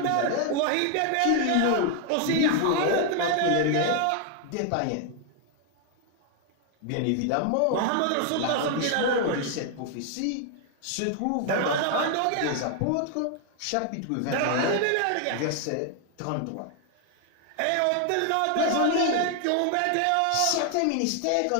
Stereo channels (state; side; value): different; both; correlation 0.00